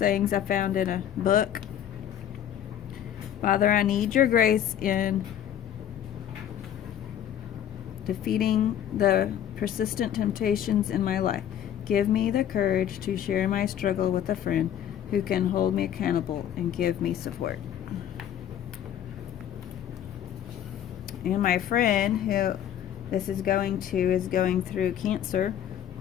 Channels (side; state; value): right; quieter; 10.3 dB